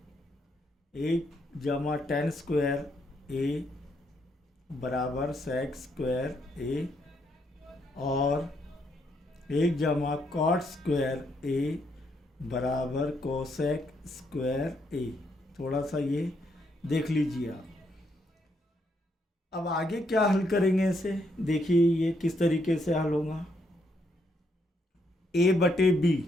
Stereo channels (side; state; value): both; normal; correlation 0.75